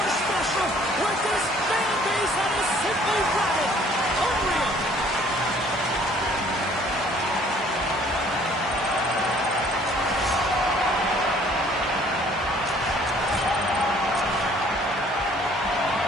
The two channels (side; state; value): both; normal; correlation 0.57